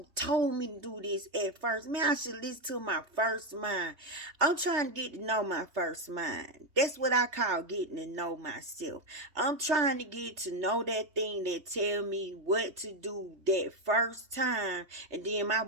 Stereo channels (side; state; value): left; late; 3.3 ms